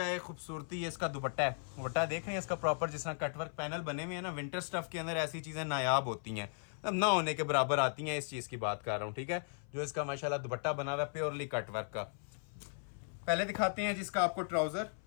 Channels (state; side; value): silent; right; 53 dB below the other